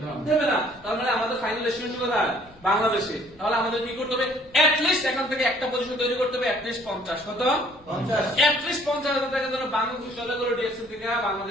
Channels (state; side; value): noise; left; rumble, 26 dB below the sound